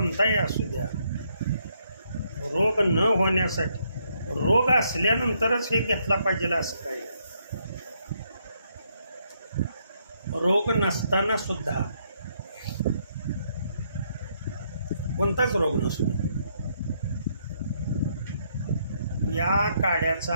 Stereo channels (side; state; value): both; inverted; correlation -0.74